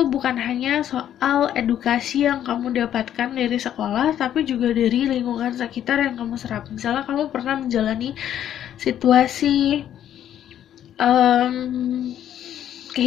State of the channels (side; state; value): right; quieter; 10.7 dB